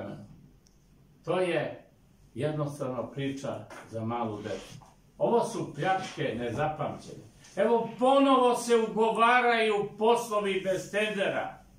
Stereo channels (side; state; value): both; identical; correlation 1.00